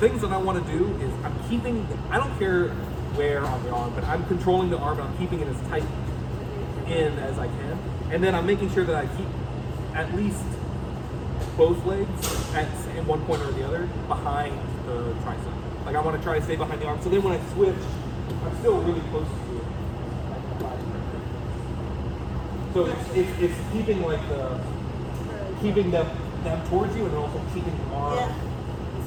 that I want to do is I'm keeping. I don't care where on the arm, but I'm controlling the arm and I'm keeping it as tight in as I can, and then I'm making sure that I keep at least both legs in one point or the other behind the tricep. Like I want to try to stay behind the arm. So then when I switch, I'm still really close to it. So it's keeping like keeping them towards you and then also keeping the arm. Yeah.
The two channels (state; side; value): identical; both; correlation 1.00